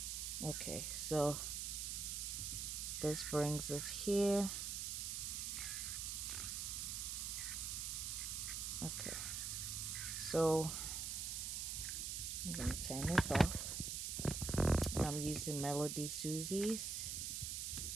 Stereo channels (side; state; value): right; noise; hiss, 2 dB below the sound